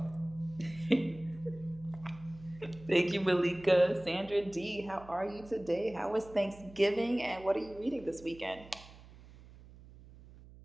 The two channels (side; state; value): right; noise; hum, 20 dB below the sound